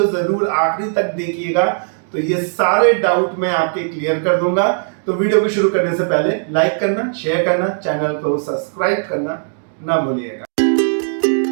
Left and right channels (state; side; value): silent; left; digital silence